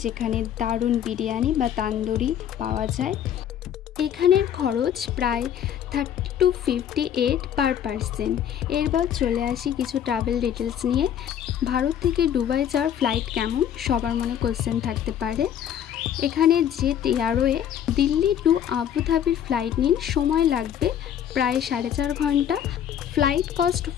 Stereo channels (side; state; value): right; quieter; 9.7 dB